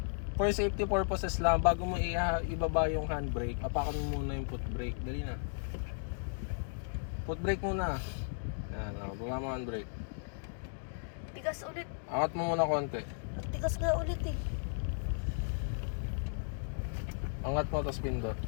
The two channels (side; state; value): right; silent; digital silence